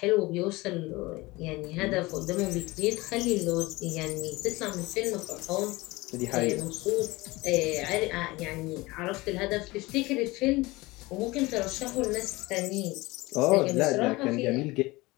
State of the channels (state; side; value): quieter; right; 21.5 dB